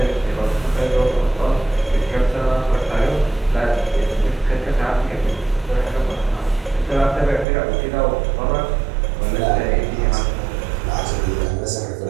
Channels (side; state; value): left; drops out; at 7.5 s